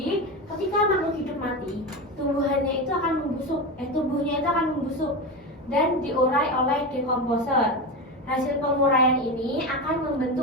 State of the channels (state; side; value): normal; both; correlation 0.20